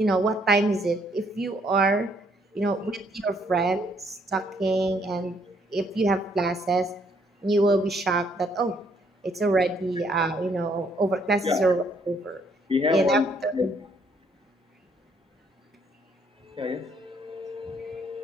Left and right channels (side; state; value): both; normal; correlation 0.68